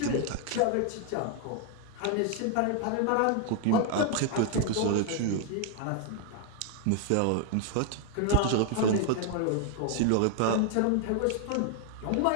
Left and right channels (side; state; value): both; different; correlation 0.00